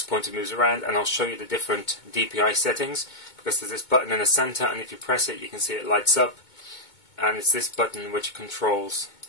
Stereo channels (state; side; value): late; right; 2.2 ms